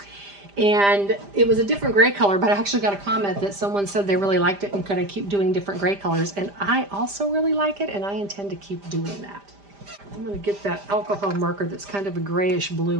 And it was a different gray color, but I actually got a comment that someone said they really liked it and could I keep doing different gray colors. And I also really like it, and I intend to keep doing that. I'm going to get that alcohol marker that's kind of a grayish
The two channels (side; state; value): left; late; 5.0 ms